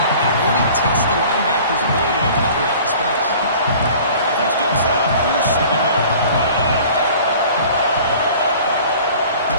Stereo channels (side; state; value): both; inverted; correlation -0.47